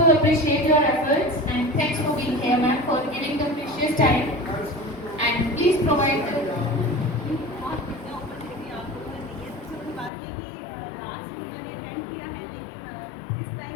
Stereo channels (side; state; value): right; drops out; at 10.1 s